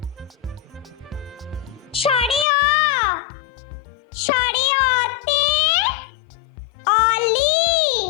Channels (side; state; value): right; drops out; at 2.5 s